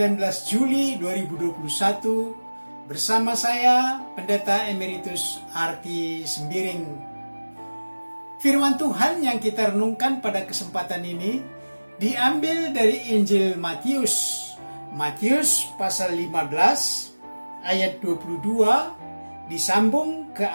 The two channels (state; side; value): inverted; both; correlation -1.00